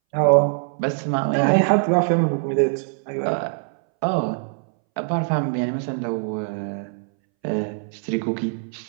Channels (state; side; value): silent; left; 62 dB below the other